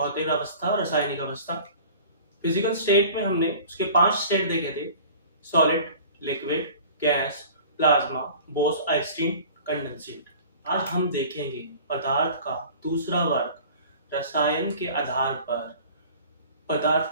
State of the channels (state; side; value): inverted; both; correlation -0.44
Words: अवस्था, रासायनिक अवस्था। फिजिकल स्टेट में हमने उसके 5 स्टेट देखे थे: solid, liquid, gas, plasma, Bose Einstein, condensate. आज हम देखेंगे पदार्थ का दूसरा वर्ग, रसायन के आधार पर पदार्थ